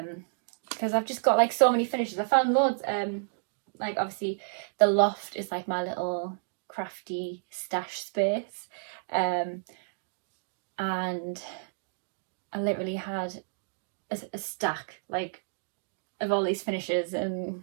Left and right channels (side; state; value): left; silent; digital silence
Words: Because I've just got like so many finishes. I found loads. Like obviously the loft is like my little crafty stash space. And I literally had a stack like of all these finishes and